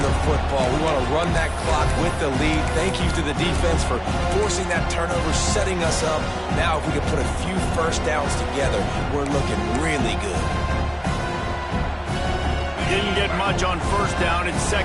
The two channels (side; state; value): both; identical; correlation 1.00